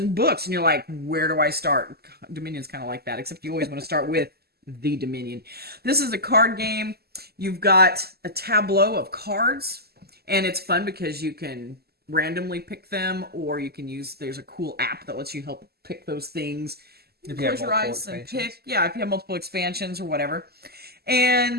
books, and you're like, where do I start? Dominion's kind of like that, except you always want to start with the Dominion. This is a card game. You've got a tableau of cards, and it's fun because you can randomly pick them, or you can use. There's a cool app that lets you help pick those things. If you have Close your multiple eyes and expansions. pick. Yeah, if you have multiple expansions or whatever.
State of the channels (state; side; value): late; left; 0.46 ms